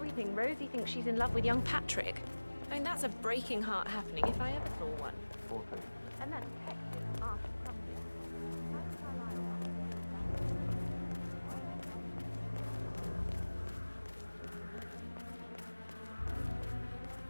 Rosie thinks she's in love with young Patrick. I mean, that's a breaking heart happening if I ever saw one. And that detective asked something.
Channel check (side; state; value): both; inverted; correlation -1.00